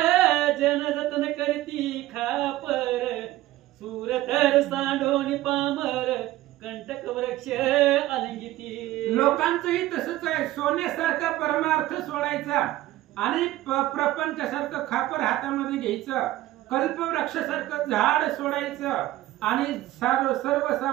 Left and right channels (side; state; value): left; quieter; 15.8 dB